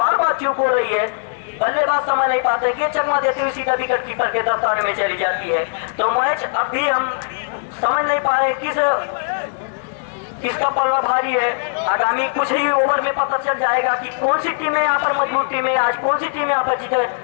बार चूक हो रही है, बल्लेबाज समझ नहीं पाते कि चकमा देते हुए सीधा विकेट कीपर के दस्ताने में चली जाती है। तो मैच अब भी हम समझ नहीं पा रहे किसका पल्ला भारी है। आगामी कुछ ही ओवर में पता चल जाएगा कि कौन सी टीमें यहाँ पर मजबूत टीमें, आज कौन सी टीमें यहाँ पर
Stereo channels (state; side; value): silent; right; digital silence